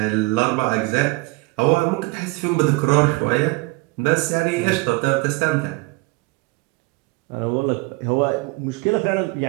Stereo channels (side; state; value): left; quieter; 25.6 dB